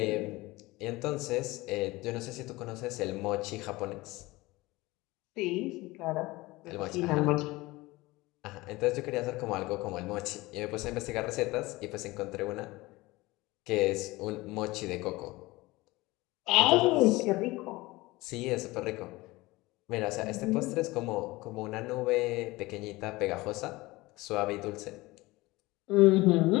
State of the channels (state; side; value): quieter; right; 20.8 dB